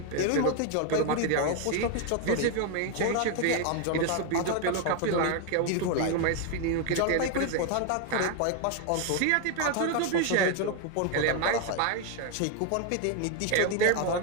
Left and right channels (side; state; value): both; different; correlation 0.01